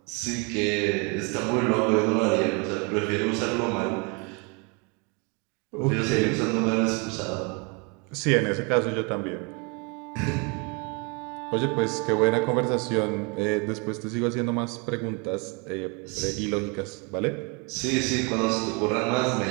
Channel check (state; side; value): quieter; left; 32.1 dB